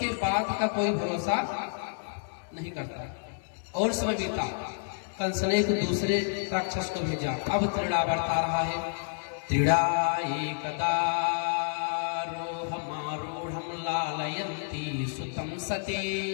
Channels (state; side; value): silent; right; 58 dB below the other